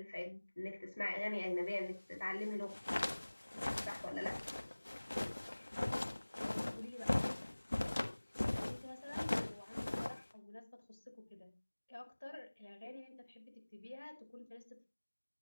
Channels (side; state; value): both; inverted; correlation -1.00